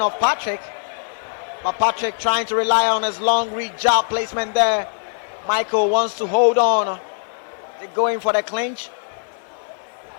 of Patrick, but Patrick trying to rely on his long reach jab placement there. Michael wants to hold on. They're going for the clinch.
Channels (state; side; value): silent; right; digital silence